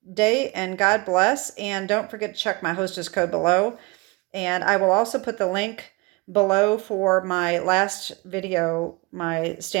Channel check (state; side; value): quieter; left; 25.5 dB